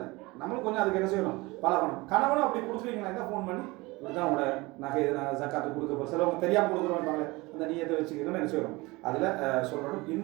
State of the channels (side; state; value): left; quieter; 22.9 dB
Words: நம்மளும் கொஞ்சம் அதுக்கு என்ன செய்யணும் பழகணும். கணவனும் அப்படி கொடுக்குறீங்கன்னா ஃபோன் பண்ணி இதுதான் உங்களோட நகை ஜக்காத்து கொடுக்க போகிற சிலவங்க தெரியாமல் கொடுக்குறோம் அந்த நீயத்தை வச்சுக்கணும் என்ன செய்யணும் அதில் சொல்லணும்.